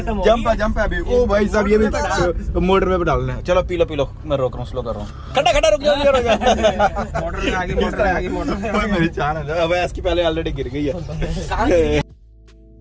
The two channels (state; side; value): identical; both; correlation 1.00